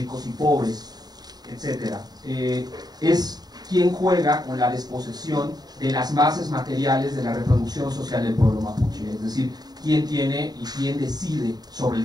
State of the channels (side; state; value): left; late; 0.19 ms